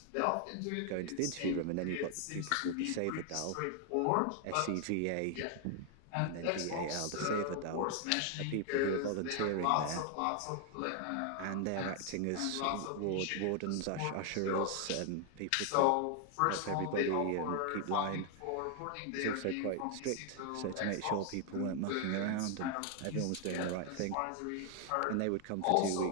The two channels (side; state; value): both; different; correlation 0.00